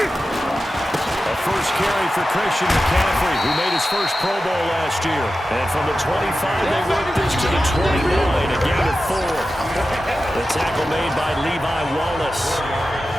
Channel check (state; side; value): normal; both; correlation 0.93